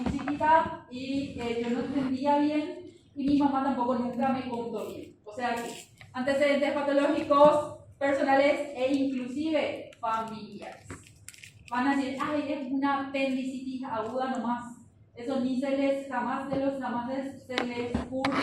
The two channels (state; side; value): identical; both; correlation 1.00